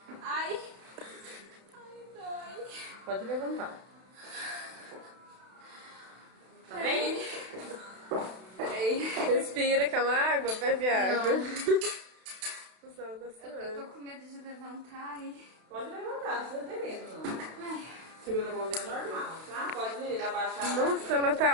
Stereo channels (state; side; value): late; left; 32 ms